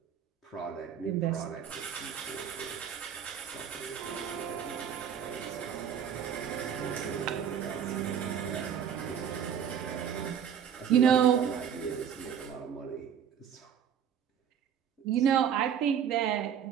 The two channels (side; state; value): left; quieter; 8.4 dB